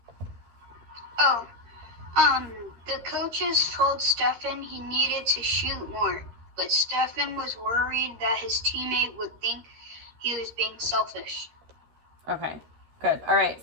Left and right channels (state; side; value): late; left; 13 ms